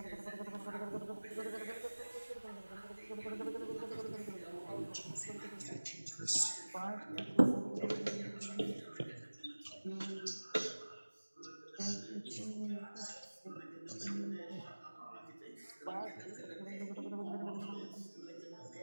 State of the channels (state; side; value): inverted; both; correlation -1.00